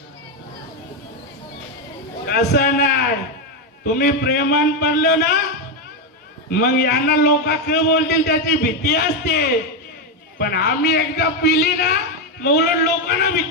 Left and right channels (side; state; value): both; normal; correlation 0.06